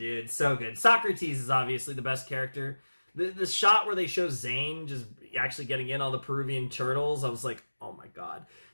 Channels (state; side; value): inverted; both; correlation -1.00